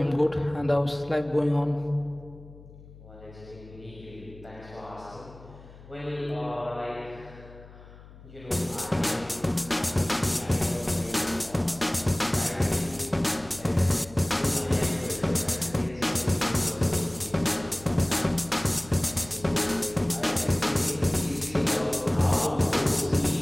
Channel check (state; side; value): noise; left; hum, 20 dB below the sound